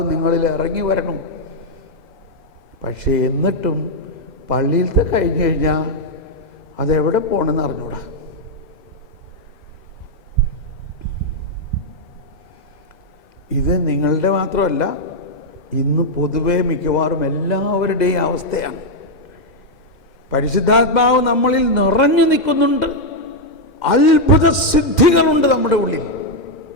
നിങ്ങളിൽ ഇറങ്ങി വരണം. പക്ഷേ എന്നിട്ടും പള്ളിയിലത്തെ കഴിഞ്ഞു കഴിഞ്ഞാൽ അതെവിടെ പോകണമെന്ന് അറിഞ്ഞൂടാ. ഇത് നിങ്ങളുടെ മാത്രമല്ല, ഇന്ന് പൊതുവെ മിക്കവാറും എല്ലാവരുടെയും അവസ്ഥയാണ്. പരിശുദ്ധാത്മാവ് നമ്മളിൽ നിറഞ്ഞു നിൽക്കുന്നുണ്ട്. അത്ഭുത സിദ്ധികളുണ്ട് നമ്മുടെ ഉള്ളിൽ.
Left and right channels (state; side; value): late; right; 2.1 ms